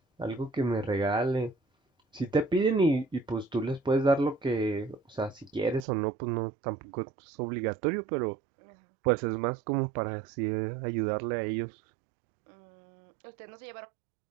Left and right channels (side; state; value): left; drops out; at 5.9 s